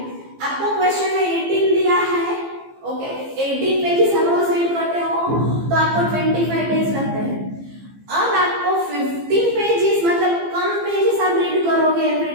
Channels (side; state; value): left; late; 15 ms